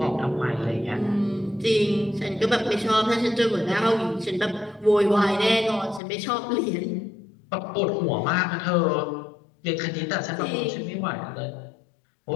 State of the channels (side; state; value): right; drops out; at 6.0 s